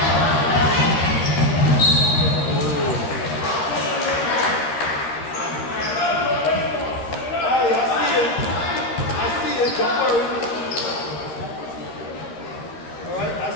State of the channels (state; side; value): late; right; 13 ms